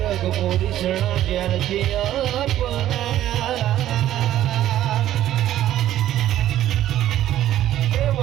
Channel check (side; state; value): left; quieter; 12.8 dB